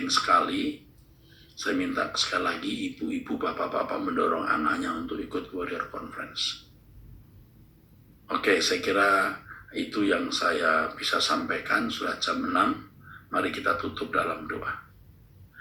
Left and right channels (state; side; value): identical; both; correlation 1.00